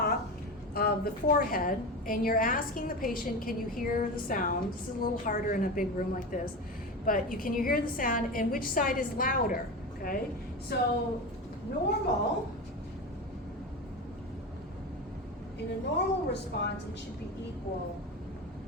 of the forehead, and you're asking the patient, can you hear the sound? This is a little harder in a big room like this, but can you hear the sound, and which side is louder, okay? So normal, in a normal response, it should be equal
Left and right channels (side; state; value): both; normal; correlation 0.24